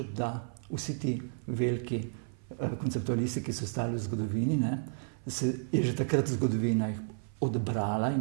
da vsi ti veliki konceptualisti, ki so stali v zgodovini, ne, je že takrat zgodovina jih odbrala in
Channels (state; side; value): silent; left; 56 dB below the other